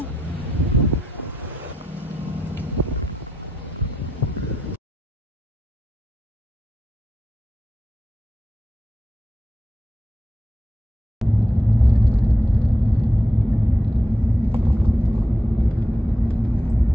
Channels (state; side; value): normal; both; correlation 0.86